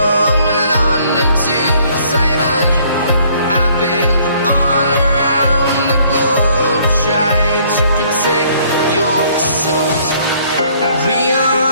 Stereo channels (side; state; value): both; inverted; correlation -0.62